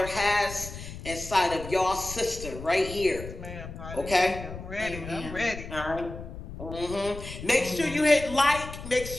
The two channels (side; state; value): left; noise; rumble, 11 dB below the sound